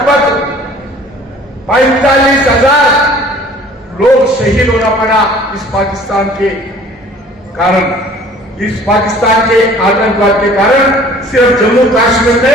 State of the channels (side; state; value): both; normal; correlation 0.51